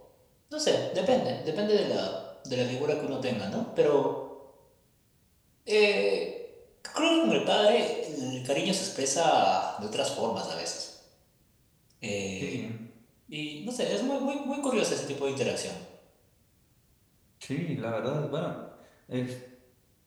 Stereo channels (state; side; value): identical; both; correlation 1.00